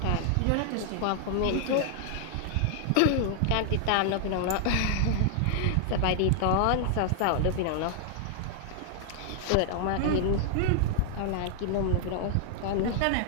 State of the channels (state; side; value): different; both; correlation -0.01